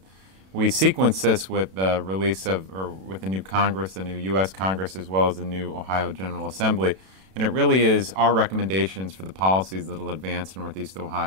We sequence this with the release of, or with the new Congress, the new U.S. Congress, as well as the new Ohio General Assembly. And it really is our recommendations for the policies that will advance Northeast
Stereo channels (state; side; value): late; left; 32 ms